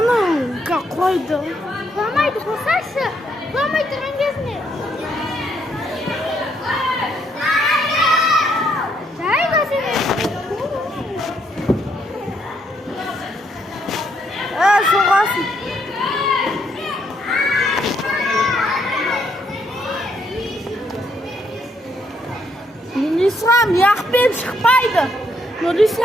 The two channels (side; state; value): both; normal; correlation 0.73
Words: қойды. Құламайды, қосашы. Құламай тұрған кезіне. Жай көзіне. Соғасын. Нұрислам, яқпен шықпайды.